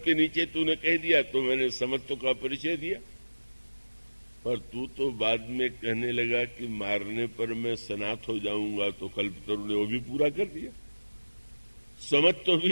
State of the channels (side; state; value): both; inverted; correlation -1.00